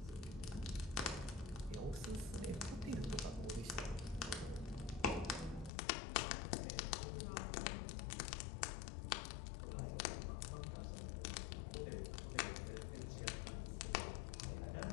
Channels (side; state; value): right; drops out; at 5.7 s